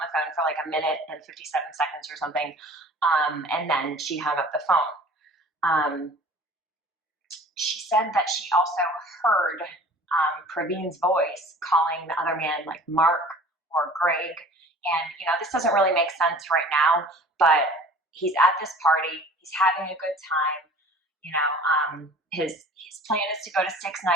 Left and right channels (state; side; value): normal; both; correlation 0.46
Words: the phone for like a minute and 57 seconds or something. And then she hung up the phone. Um, she said that she also heard Praveen's voice calling the other man like Mark or Greg. And, you know, this doesn't really make sense right now, but he's at this party, he's having a good time. You know, his plan is to go to Six